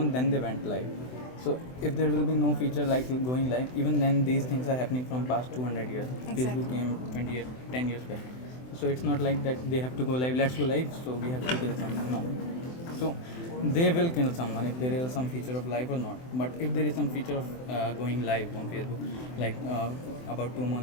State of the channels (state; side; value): late; right; 24 ms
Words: then they went live. So if there will be no feature like going live, even then these things are happening from past 200 years. Exactly. Facebook came 10 years back. So it's not like that they have to go live, let's go live, so we have to kill someone. No. So they will kill someone if there is some feature of live or not. But if there is some feature of going live on Facebook, like about 2